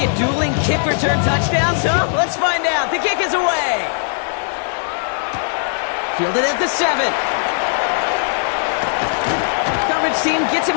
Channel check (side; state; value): right; silent; digital silence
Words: dueling kick return touchdowns, huh? Let's find out. The kick is away. Fielded at the 7. Coverage team gets